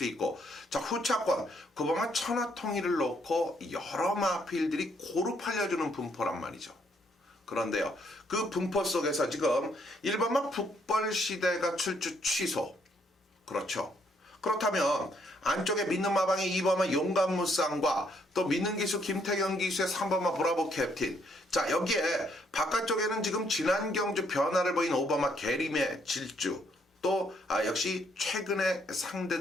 있고 자 후차권 구바마 천하통일을 놓고 여러 마필들이 고루 팔려주는 분포란 말이죠. 그런데요. 그 분포 속에서 지금 1번마 북벌시대가 출주 취소. 그렇죠. 그렇다면 안쪽에 믿는 마방의 2번마 용감무쌍과 또 믿는 기수 김태경 기수의 3번마 브라보 캡틴. 자 여기에 바깥쪽에는 지금 지난 경주 변화를 보인 5번마 게림의 질주. 또 역시 최근의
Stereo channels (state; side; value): normal; both; correlation 0.70